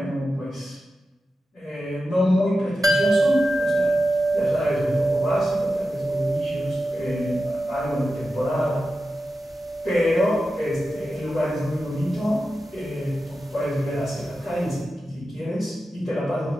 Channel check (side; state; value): both; normal; correlation 0.92